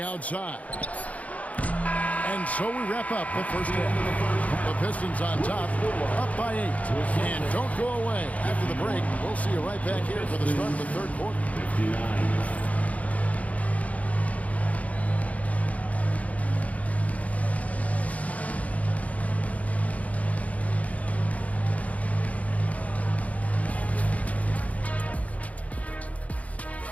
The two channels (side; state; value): right; late; 0.069 ms